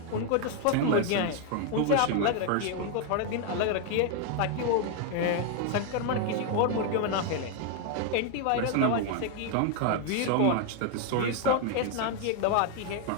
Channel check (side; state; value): both; different; correlation 0.00